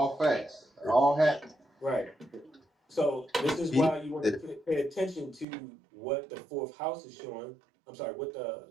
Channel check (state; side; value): drops out; left; at 5.5 s